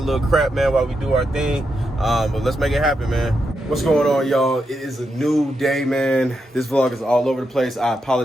little crap, man, while we do our thing. But let's make it happen, man. What's going on, y'all? It is a new day, man. This vlog is all over the place. I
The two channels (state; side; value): normal; both; correlation 0.84